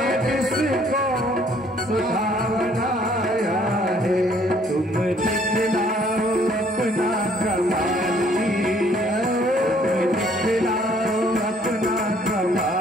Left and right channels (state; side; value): normal; both; correlation 0.62